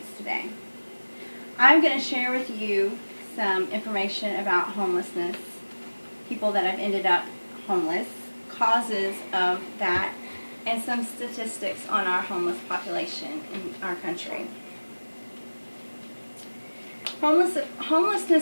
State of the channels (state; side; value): inverted; both; correlation -1.00